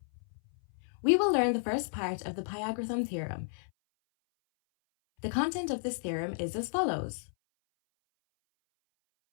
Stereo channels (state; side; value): silent; right; 56 dB below the other